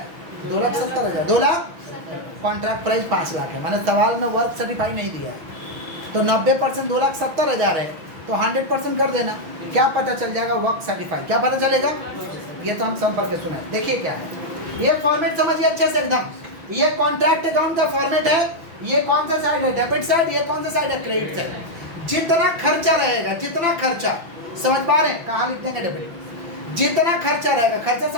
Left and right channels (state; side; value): late; left; 6.0 ms